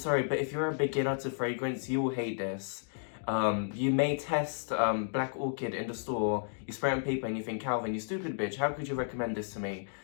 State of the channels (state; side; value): silent; right; digital silence